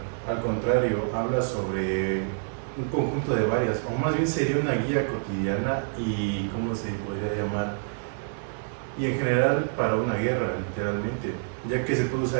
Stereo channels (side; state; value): left; silent; 60 dB below the other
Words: al contrario, habla sobre un conjunto de varias, o más bien sería una guía cotidiana y, ¿cómo se podría llamar? Y en general para una guerra, literalmente, ya que se puede